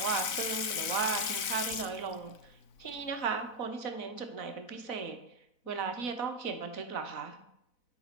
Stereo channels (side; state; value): right; late; 4.0 ms